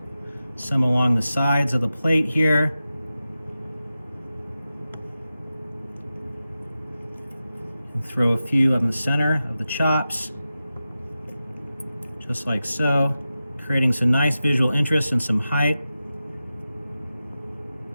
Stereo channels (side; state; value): both; inverted; correlation -0.93